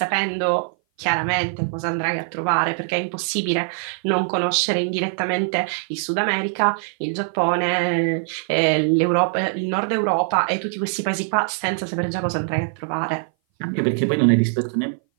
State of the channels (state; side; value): silent; left; 58 dB below the other